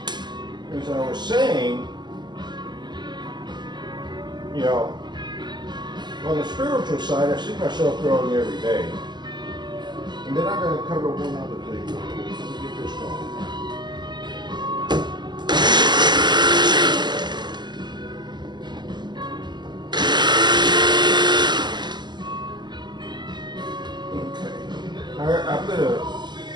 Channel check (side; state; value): left; late; 0.21 ms